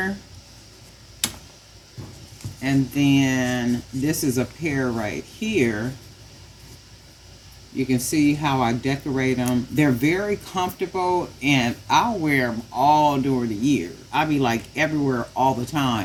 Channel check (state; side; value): identical; both; correlation 1.00